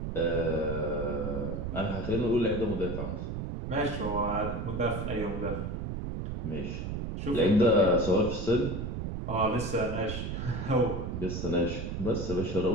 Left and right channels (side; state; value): right; noise; rumble, 4 dB below the sound